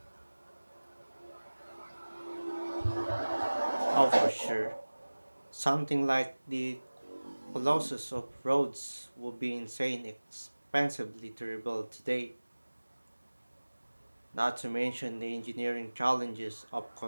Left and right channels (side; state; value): both; inverted; correlation -1.00